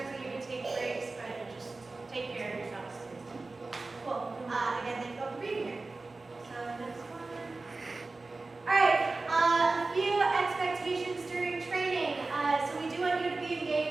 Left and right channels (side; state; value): left; quieter; 3.5 dB